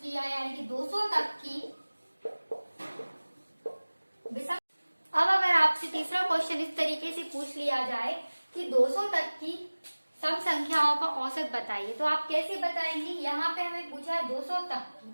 लिया यानी कि 200 तक की विषम, अब अगर आपसे तीसरा क्वेश्चन इस तरीके से पूछ लिया जाए कि 200 तक की सम संख्याओं का औसत बताइए, तो आप कैसे बताएंगे। यहाँ पे हमें पूछा है 200 तक की,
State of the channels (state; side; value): inverted; both; correlation -1.00